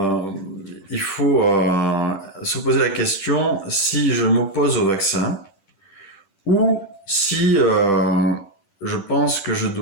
il faut se poser la question si je m'oppose au vaccin ou si je pense que je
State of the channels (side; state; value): right; late; 10 ms